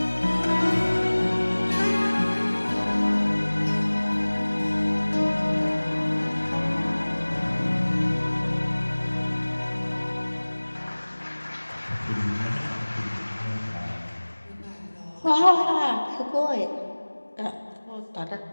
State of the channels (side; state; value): both; inverted; correlation -1.00